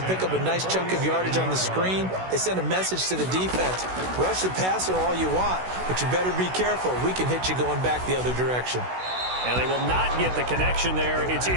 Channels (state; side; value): late; left; 16 ms